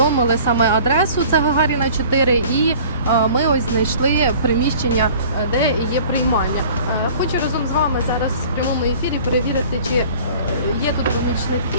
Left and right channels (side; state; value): both; inverted; correlation -0.47